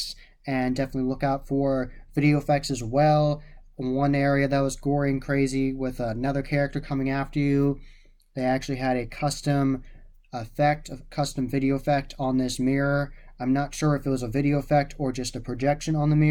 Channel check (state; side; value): identical; both; correlation 1.00